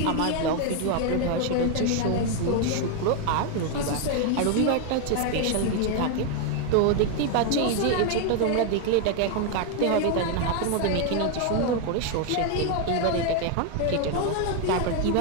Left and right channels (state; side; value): different; both; correlation 0.00